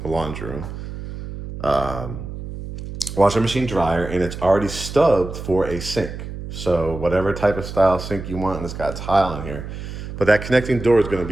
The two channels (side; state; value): right; noise; hum, 9 dB below the sound